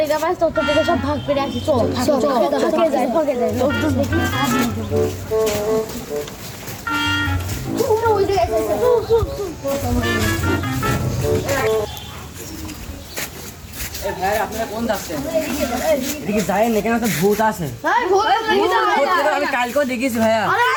পাস তত টাকা সব ভাগ করে আসি চল ভাগে যাই লোকজন দেখি ওই এই ভাই আপনারা কোন যাচ্ছেন এদিকে যায়েন এখানে তো ভূত আছে আমি কালকেও দেখেছি ভাইয়া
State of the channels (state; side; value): identical; both; correlation 1.00